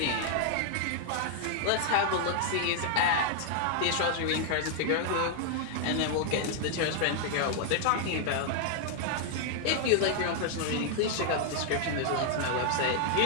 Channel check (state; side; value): different; both; correlation 0.00